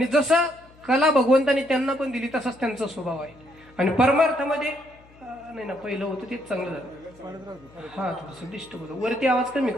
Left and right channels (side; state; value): left; noise; hum, 26 dB below the sound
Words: जसा कला भगवंताने त्यांना पण दिली तसाच त्यांचा स्वभाव आहे. आणि परमार्थामध्ये नाही ना, पहिलं होतं तेच चांगलं झालं. हा, थोडंसं डिस्टर्ब होतं. वरती आवाज कमी